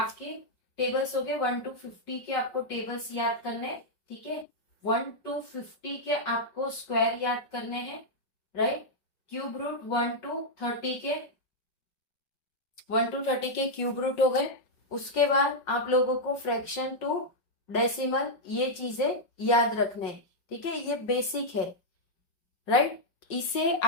टेबल्स हो गए 1 to 50 के, आपको टेबल्स याद करने हैं। ठीक है। 1 to 50 के आपको स्क्वायर याद करने हैं। राइट। क्यूब रूट 1 to 30 के, 1 to 30 के क्यूब रूट हो गए। उसके बाद आप लोगों को फ्रैक्शन टू डेसिमल, ये चीजें याद रखने हैं। ठीक है, ये बेसिक है। राइट। इसे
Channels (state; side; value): late; right; 5.5 ms